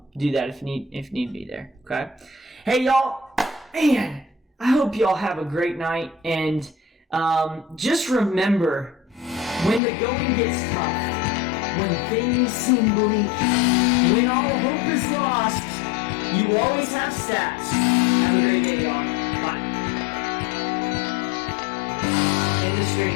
do that if need be there. Okay. Hey, y'all. Man. I hope y'all have a great night, and just remember, when the going gets tough, when things seem bleak, when all hope is lost, you always have stats. Have a great day, y'all. Bye. End the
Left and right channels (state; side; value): drops out; right; at 9.8 s